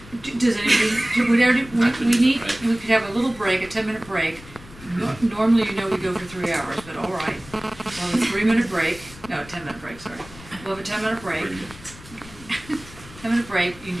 Does anybody? We could have a little break, a 10-minute break. Normally, we go for 3 hours, but all right. We'll have a 3-minute break. No, a 10-minute break. Sorry. We'll have a 10-minute break. 10-minute break. You can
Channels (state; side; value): noise; left; rumble, 19 dB below the sound